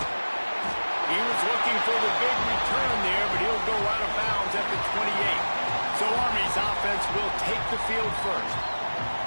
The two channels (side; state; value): both; inverted; correlation -1.00